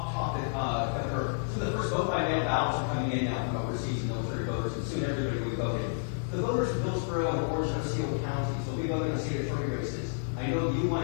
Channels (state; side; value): silent; right; digital silence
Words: topic, Governor? So the first vote by mail ballots are coming in now from overseas military voters, and soon everybody will be voting. The voters of Hillsborough and Orange and Osceola counties will be voting in state attorney races. I know you